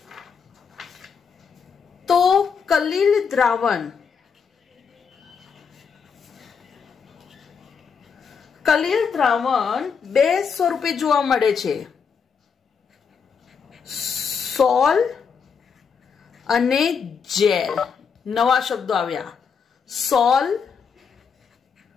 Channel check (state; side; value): quieter; right; 6.3 dB